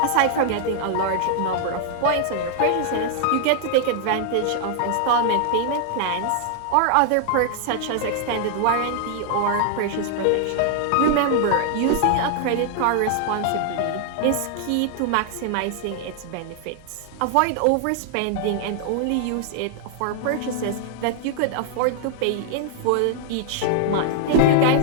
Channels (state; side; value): different; both; correlation 0.00